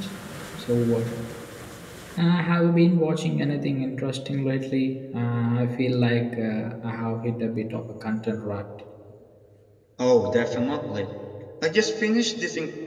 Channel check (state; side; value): identical; both; correlation 1.00